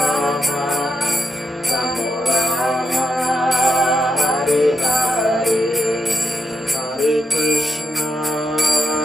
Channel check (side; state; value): both; normal; correlation 0.80